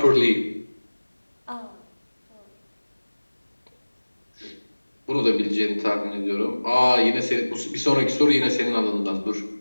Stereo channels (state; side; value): inverted; both; correlation -1.00